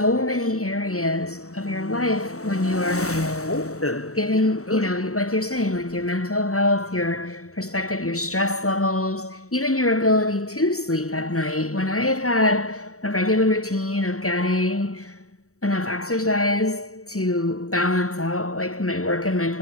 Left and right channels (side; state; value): right; late; 0.65 ms